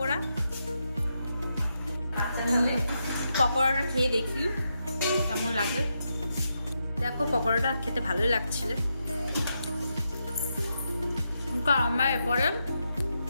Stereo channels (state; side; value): inverted; both; correlation -0.84